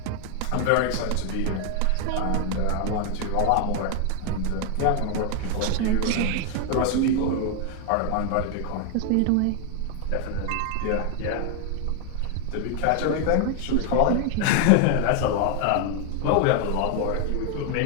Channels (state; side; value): different; both; correlation 0.00